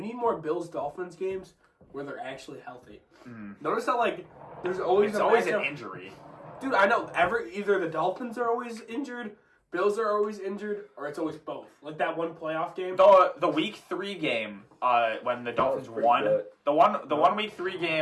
need more Bills-Dolphins games where they're actually healthy. Notice how like there's always an injury. Dude, I know either the Dolphins are always injured, Bills are always injured, or it's always both. Like that one playoff game. The week 3 game, when the Dolphins won, good. the one week 3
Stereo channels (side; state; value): both; identical; correlation 1.00